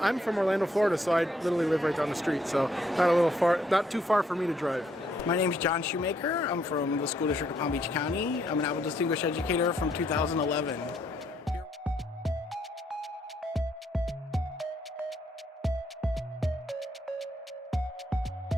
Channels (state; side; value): normal; both; correlation 0.71